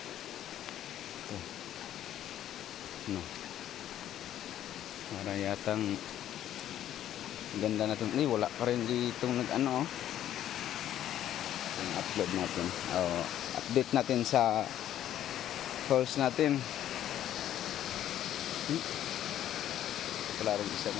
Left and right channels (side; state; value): right; quieter; 11.6 dB